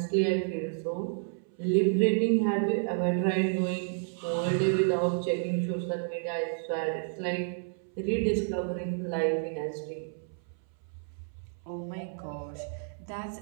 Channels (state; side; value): silent; left; 57 dB below the other